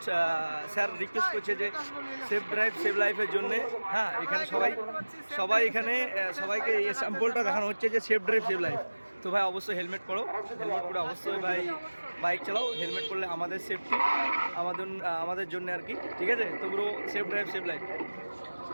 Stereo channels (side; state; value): both; inverted; correlation -1.00